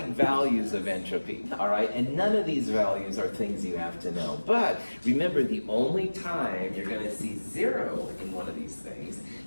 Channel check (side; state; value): both; inverted; correlation -1.00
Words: values of entropy, all right? And none of these values are things you have to know. But remember, the only time you're going to see 0 in one of these things